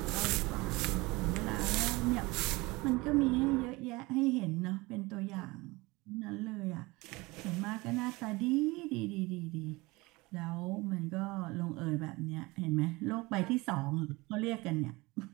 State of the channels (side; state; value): left; quieter; 22.9 dB